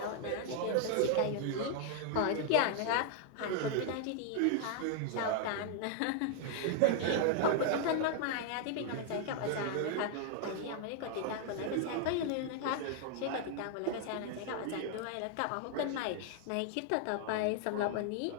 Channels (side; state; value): both; different; correlation 0.00